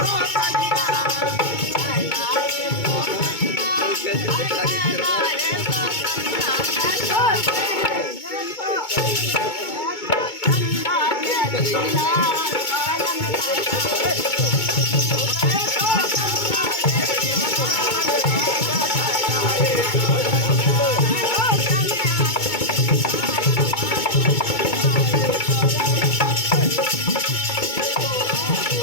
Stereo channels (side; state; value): right; late; 2.2 ms